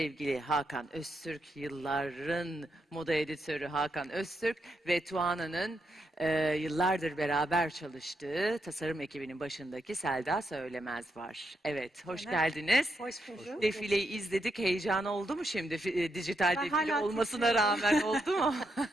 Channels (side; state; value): both; normal; correlation 0.81